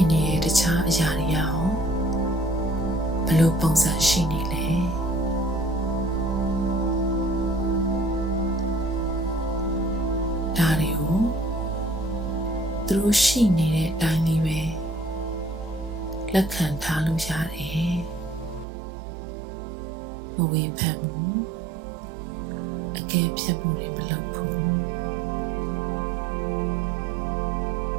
နေတဲ့တခြားအရာတွေရောဘယ်လိုပုံစံရှိနေလဲဒါတွေကိုသူတို့ရှိနေတဲ့အတိုင်းလေးပဲလက်ခံထားလို့ရတယ်မဝေဖန်ဘူးအကဲဖြတ်မှုတွေမလုပ်ဘူး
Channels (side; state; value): left; drops out; at 18.7 s